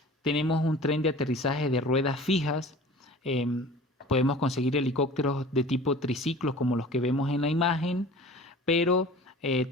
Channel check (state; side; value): normal; both; correlation 0.42